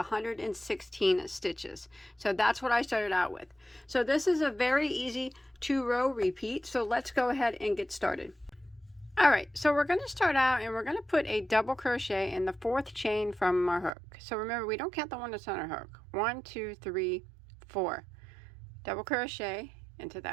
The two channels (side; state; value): left; drops out; at 13.9 s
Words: stitches. So that's what I started out with. So this is a very easy 2-row repeat. So let's go ahead and get started. All right, so we're going to start out and we're going to put a double crochet in the 4th chain from our hook. So remember, we don't count the one that's on our hook. 1 2 3 4. Double crochet into